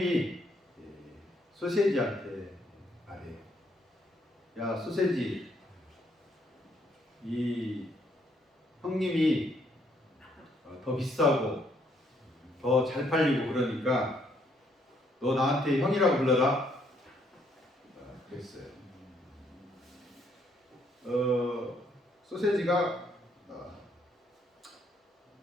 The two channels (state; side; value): normal; both; correlation 0.70